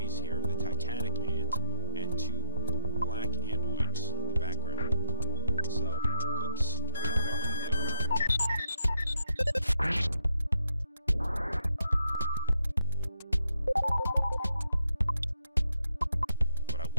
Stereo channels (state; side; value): inverted; both; correlation -0.84